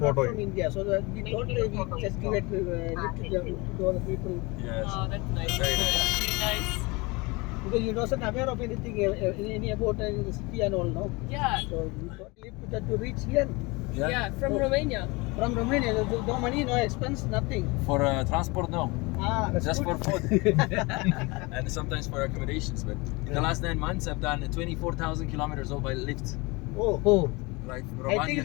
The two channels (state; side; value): quieter; right; 25.5 dB